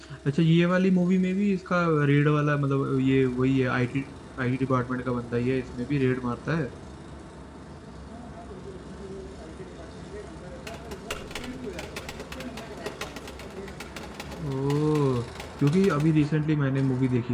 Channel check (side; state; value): both; identical; correlation 1.00